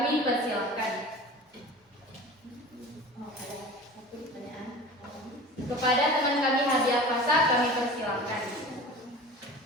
persilahkan. Kepada teman kami Hadiah Fasa, kami persilahkan.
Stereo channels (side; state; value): both; normal; correlation 0.37